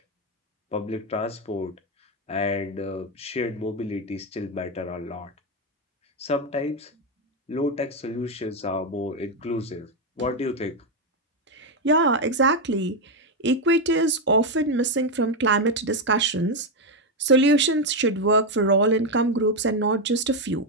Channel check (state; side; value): normal; both; correlation 0.06